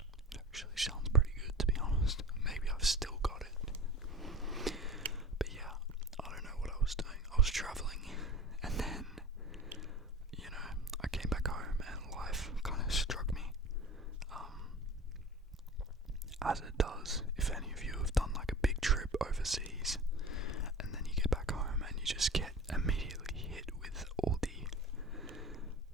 It actually sounds pretty good, to be honest. Maybe I've still got it. But yeah, I don't know what I was doing. I was traveling, and then, I came back home and life kind of struck me. As it does, if any of you have done like a big trip overseas, and then you get back home and you just get immediately hit with all the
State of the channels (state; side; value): normal; both; correlation 0.35